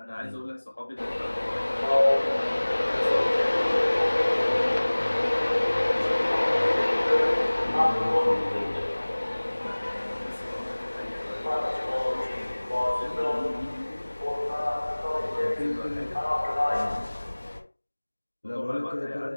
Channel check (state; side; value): inverted; both; correlation -1.00